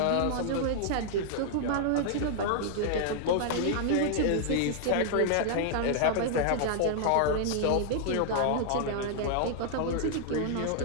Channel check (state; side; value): different; both; correlation -0.01